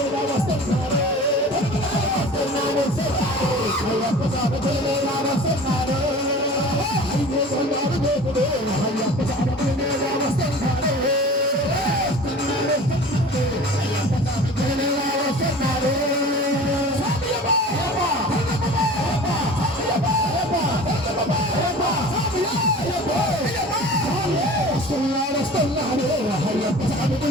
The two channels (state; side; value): normal; both; correlation 0.40